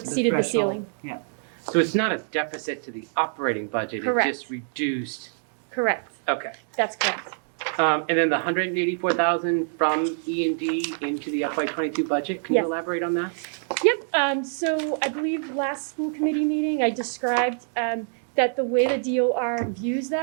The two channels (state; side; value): silent; left; digital silence